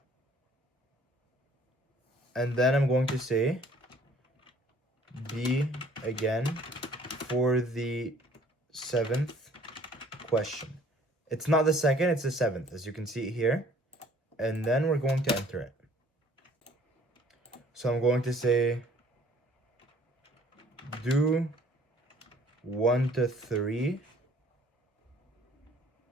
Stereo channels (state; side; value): normal; both; correlation 0.57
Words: And then I'm going to say B again for the 7th question. It's not the 2nd, it's the 7th, as you can see here. And then we're going to enter it. So I'm going to say do 1 to 3.